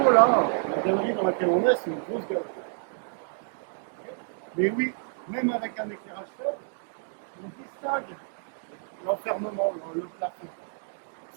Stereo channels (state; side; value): silent; left; digital silence